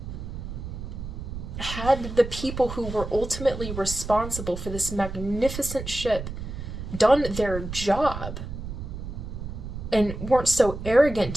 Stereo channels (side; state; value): right; noise; rumble, 8 dB below the sound